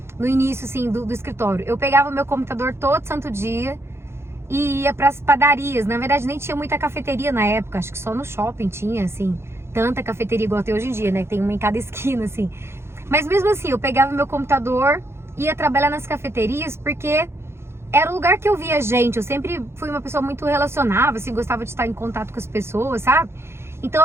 No início, assim, do escritório, eu pegava o meu computador todo santo dia e ia pras padarias. Na verdade, nem tinha muita cafeteria na época, acho que só no shopping tinha, assim, tanta cafeteria igual tem hoje em dia, né? Tem uma em cada esquina, assim. Mas mesmo assim, eu pegava meu computador, ia trabalhar nas cafeterias, porque era o lugar que eu via gente. Eu sempre fui uma pessoa muito relacionável, assim, gostava de estar em contato com as pessoas, sabe? Então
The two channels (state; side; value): late; left; 0.12 ms